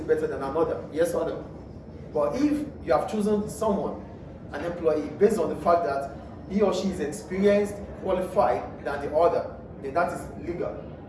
better than another, yes or no? But if you have chosen someone, an employee, based on the fact that he or she is experienced, qualified than the other, then that is legal.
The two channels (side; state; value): both; identical; correlation 1.00